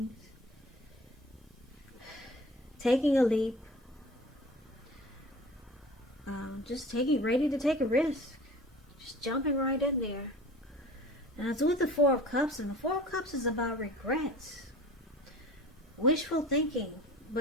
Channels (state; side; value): normal; both; correlation 0.42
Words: Taking a leap. Just ready to take a risk. Just jumping right in there. And it's with the Four of Cups. And the Four of Cups is about regrets. Wishful thinking.